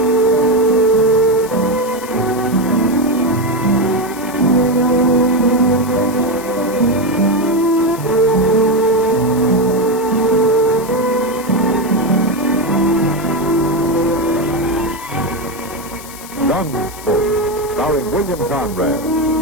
Gunsmoke, starring William Conrad,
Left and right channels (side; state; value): left; noise; hiss, 16 dB below the sound